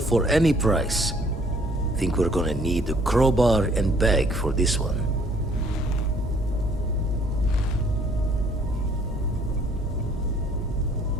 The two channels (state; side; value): normal; both; correlation 0.60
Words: for any price. Think we're gonna need a crowbar and bag for this one.